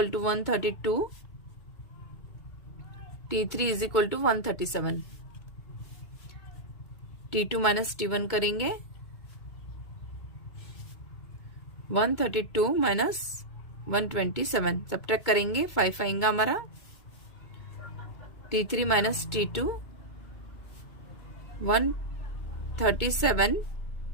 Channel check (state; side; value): late; right; 2.2 ms